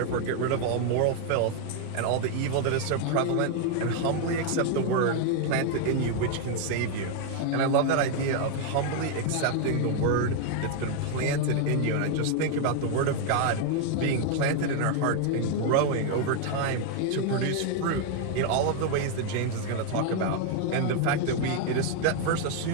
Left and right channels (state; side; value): different; both; correlation 0.01